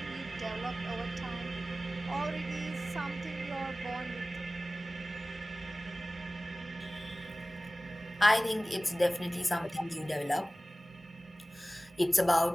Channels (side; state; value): both; normal; correlation 0.97